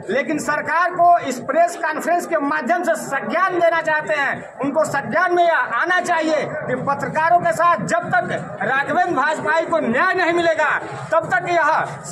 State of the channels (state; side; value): identical; both; correlation 1.00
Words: लेकिन सरकार को इस प्रेस कॉन्फ्रेंस के माध्यम से संज्ञान देना चाहते हैं। उनको संज्ञान में आना चाहिए कि पत्रकारों के साथ जब तक राघवेंद्र वाजपेयी को न्याय नहीं मिलेगा, तब तक यह